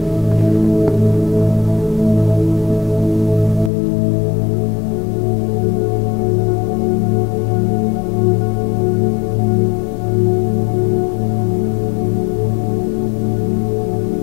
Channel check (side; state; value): right; drops out; at 3.7 s